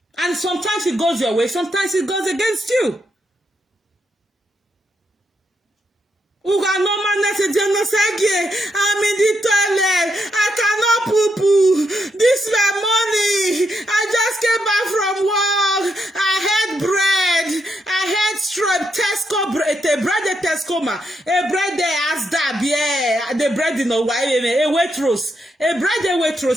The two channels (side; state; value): both; normal; correlation 0.80